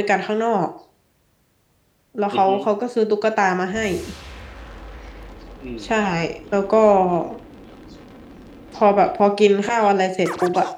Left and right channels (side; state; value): both; identical; correlation 1.00